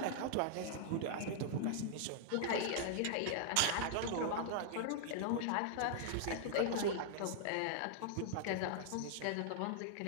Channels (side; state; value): both; different; correlation -0.01